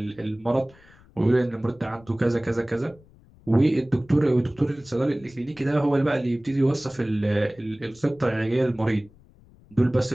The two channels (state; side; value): noise; left; rumble, 27 dB below the sound